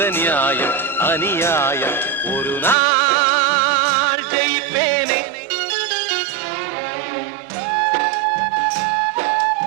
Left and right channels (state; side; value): drops out; left; at 2.8 s